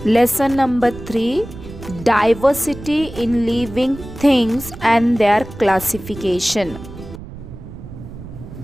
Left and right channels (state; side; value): noise; right; rumble, 13 dB below the sound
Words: Lesson number 3, Diversity in Living Things and Their Classification.